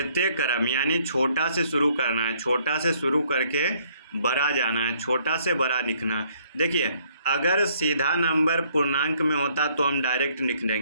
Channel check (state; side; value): inverted; both; correlation -0.65